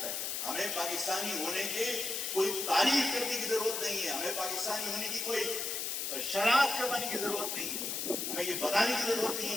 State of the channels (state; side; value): noise; left; hiss, 2 dB below the sound